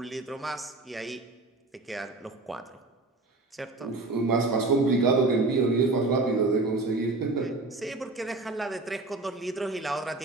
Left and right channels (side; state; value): left; quieter; 3.2 dB